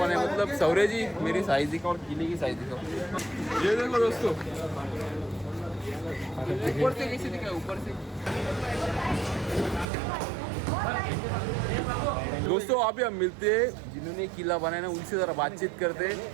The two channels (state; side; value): drops out; left; at 9.9 s